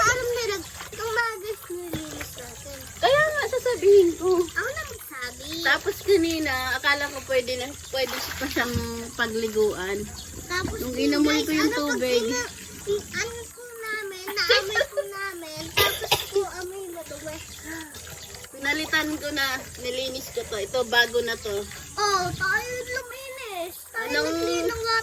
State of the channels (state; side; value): identical; both; correlation 1.00